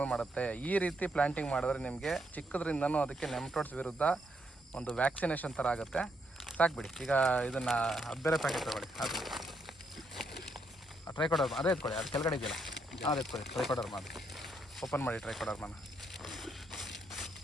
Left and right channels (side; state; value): both; normal; correlation 0.77